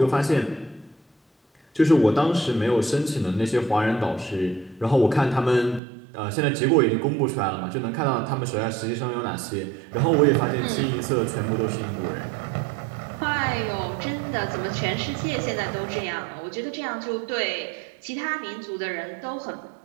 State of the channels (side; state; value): left; drops out; at 5.8 s